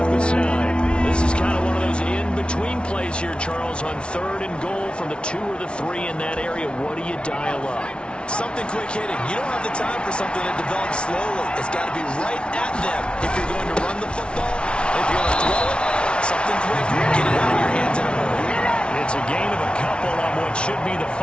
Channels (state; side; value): late; right; 0.058 ms